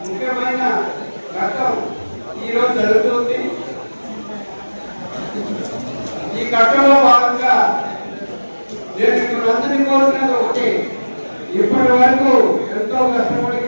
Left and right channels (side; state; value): both; inverted; correlation -1.00